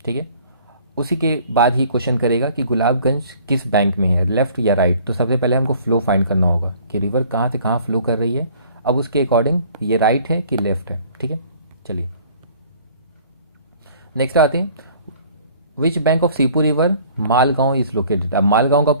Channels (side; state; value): both; inverted; correlation -0.54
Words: ठीक है, उसी के बाद ही क्वेश्चन करेगा कि गुलाबगंज किस बैंक में है, लेफ्ट या राइट। तो सबसे पहले हमको फ्लो फाइंड करना होगा कि रिवर कहाँ से कहाँ फ्लो कर रही है। अब उसके अकॉर्डिंग ये राइट है कि लेफ्ट है, ठीक है। चलिए नेक्स्ट आते हैं, which bank of Seepu river Malgaon is located. अब मालगांव का